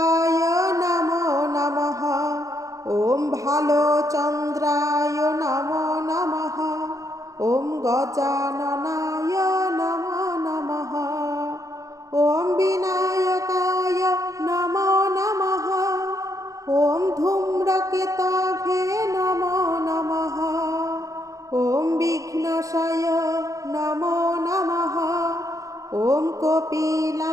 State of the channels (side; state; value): left; late; 0.16 ms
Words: नमो नमः ॐ भालचन्द्राय नमो नमः ॐ गजाननाय नमो नमः ॐ विनायकाय नमो नमः ॐ धूम्रकेतवे नमो नमः ॐ विघ्नेशाय नमो नमः ॐ